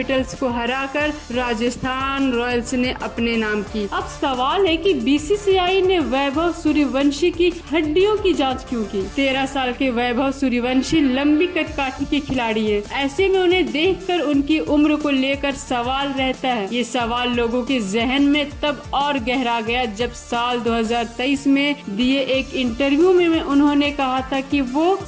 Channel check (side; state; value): both; identical; correlation 1.00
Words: को हराकर राजस्थान रॉयल्स ने अपने नाम की। अब सवाल है कि बीसीसीआई ने वैभव सूर्यवंशी की हड्डियों की जांच क्यों की? 13 साल के वैभव सूर्यवंशी लंबी कदकाठी के खिलाड़ी है। ऐसे में उन्हें देखकर उनकी उम्र को लेकर सवाल रहता है। ये सवाल लोगों के जहन में तब और गहरा गया जब साल 2023 में दिए एक इंटरव्यू में उन्होंने कहा था कि वो